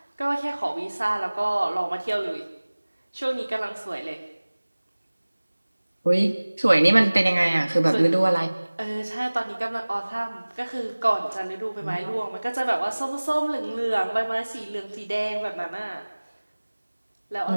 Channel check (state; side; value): inverted; both; correlation -1.00